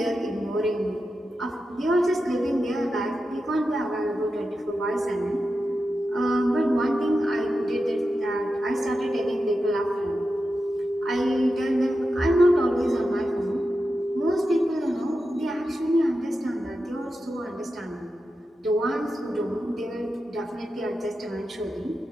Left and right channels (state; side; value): normal; both; correlation 0.90